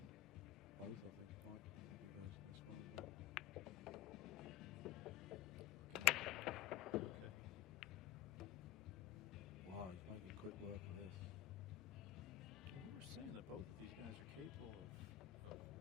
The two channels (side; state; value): right; quieter; 13.9 dB